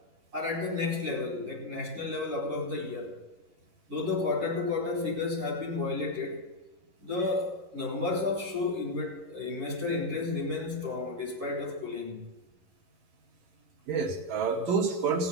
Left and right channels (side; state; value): left; late; 11 ms